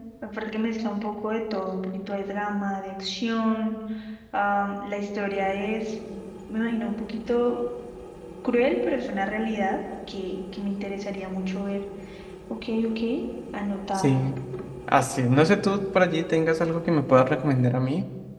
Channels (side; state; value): both; identical; correlation 1.00